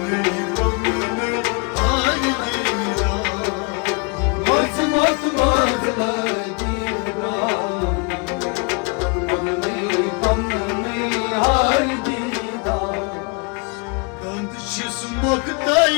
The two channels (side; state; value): right; quieter; 33.0 dB